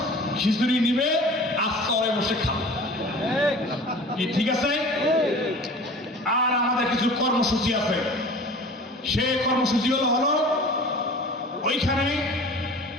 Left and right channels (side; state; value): both; normal; correlation 0.41